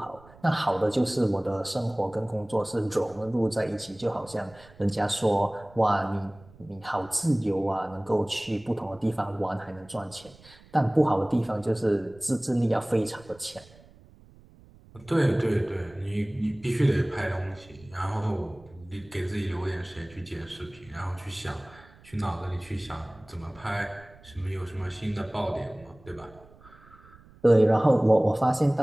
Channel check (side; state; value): right; noise; rumble, 24 dB below the sound